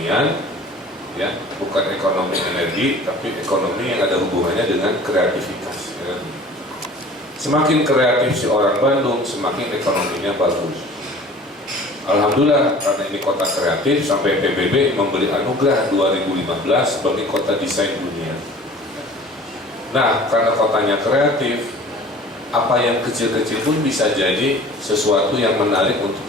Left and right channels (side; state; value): both; normal; correlation 0.45